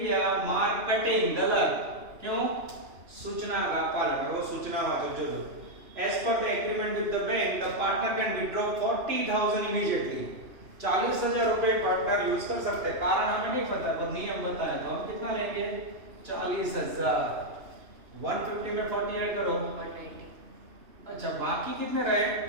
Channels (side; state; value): left; late; 2.9 ms